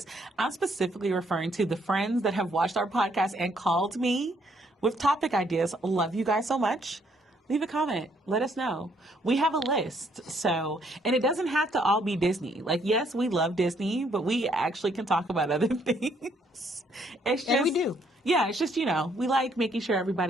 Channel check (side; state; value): both; normal; correlation 0.69